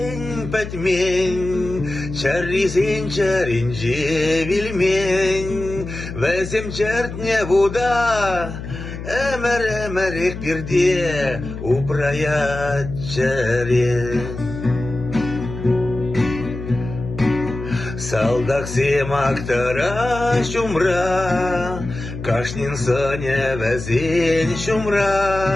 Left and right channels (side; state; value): left; noise; hum, 9 dB below the sound